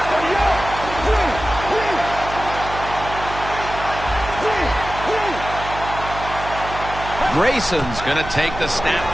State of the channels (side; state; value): right; noise; hum, 10 dB below the sound